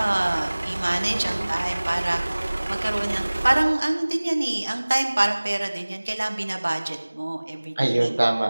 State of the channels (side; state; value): both; inverted; correlation -1.00